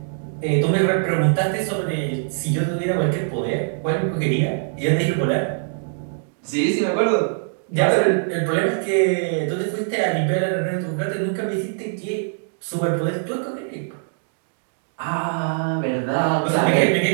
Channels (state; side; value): silent; left; digital silence